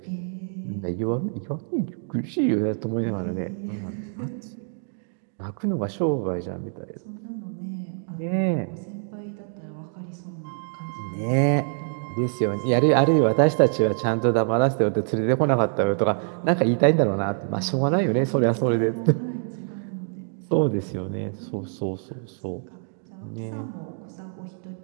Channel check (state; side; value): silent; left; digital silence